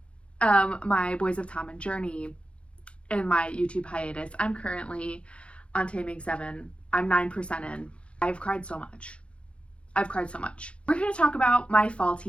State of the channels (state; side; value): late; right; 0.059 ms